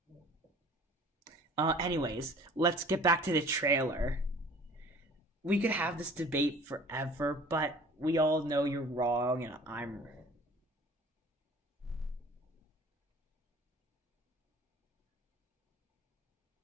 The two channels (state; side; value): normal; both; correlation 0.47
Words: Anyways, let's get back to the trailer. We could have this debate forever, but we all know you're wrong, and I'm.